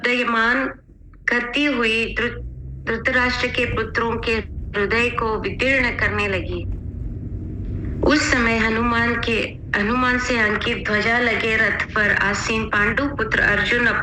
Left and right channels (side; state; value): both; identical; correlation 1.00